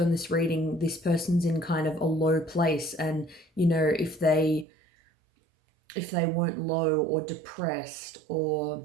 this reading, this person's in kind of a low place, and if they weren't low or depressed or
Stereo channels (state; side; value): drops out; left; at 4.7 s